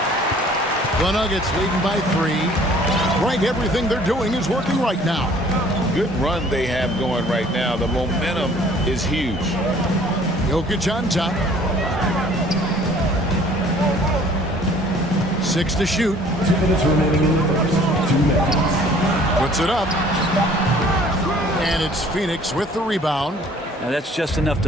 The Nuggets leading by 3. Right, everything they're doing is working right now. Good run they have going right now. The momentum is huge. Jokic on top. 6 to shoot. 2 minutes remaining in the first. 2 minutes. Puts it up. And it's Phoenix with the rebound. Now that's just enough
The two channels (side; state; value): both; normal; correlation 0.54